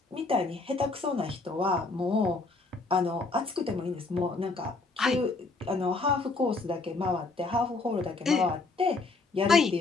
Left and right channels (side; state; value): right; quieter; 3.7 dB